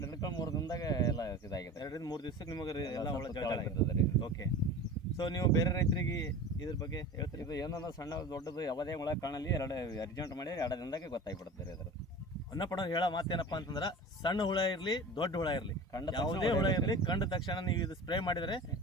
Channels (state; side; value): normal; both; correlation 0.36